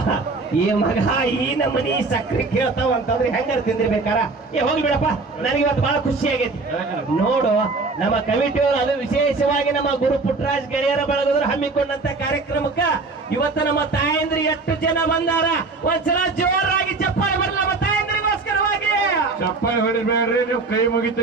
ಈ ಮಗ ಈ ನಮ್ಮನಿ ಸಕ್ರೆ ಕೇಳ್ತಾವ ಅಂತಂದ್ರೆ ಹೆಂಗಾರ ತಿಂದಿರ್ಬೇಕಾರ ಹೋಗಿ ಬಿಡಪ್ಪ ನನಗೆ ಇವತ್ತು ಬಹಳ ಖುಷಿ ಆಗೈತಿ ನೋಡು ನಮ್ಮ ಕಮಿಟಿಯವರು ಅದು ವಿಶೇಷವಾಗಿ ನಮ್ಮ ಗುರು ಪುಟ್ಟರಾಜ್ ಗೆಳೆಯರ ಬಳಗದ್ರು ಹಮ್ಮಿಕೊಂಡಂತ ಕಾರ್ಯಕ್ರಮಕ್ಕ ಇವತ್ತು ನಮ್ಮ ತಾಯಂದ್ರಿ ಎಷ್ಟು ಜನ ಬಂದಾರ ಒಂದ್ಸಲ ಜೋರಾಗಿ ಚಪ್ಪಾಳೆ ಬರಲ್ಲ ನಮ್ಮ ತಾಯಂದ್ರಿಗೋಸ್ಕರವಾಗಿ ಚಪ್ಪಾಳೆ ಹೊಡಿಬೇಡ್ರಿ ನೀವು ಕೈ ಮುಗಿತು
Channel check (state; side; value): quieter; left; 3.8 dB